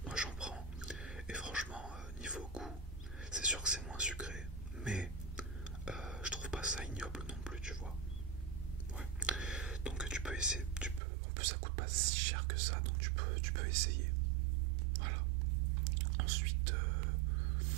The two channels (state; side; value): drops out; left; at 11.0 s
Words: moi j'en prends, et franchement, niveau goût, c'est sûr que c'est moins sucré, mais je trouve pas ça ignoble non plus, tu vois. Ouais. Donc tu peux essayer, en plus ça coûte pas si cher que ça, donc tu peux essayer. Voilà. Ensuite,